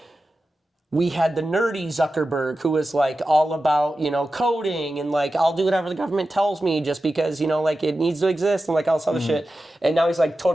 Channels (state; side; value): normal; both; correlation 0.93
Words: we had the nerdy Zuckerberg who was like all about, coding and like, I'll do whatever the government tells me just because, like it needs to exist and like all this other shit. And now he's like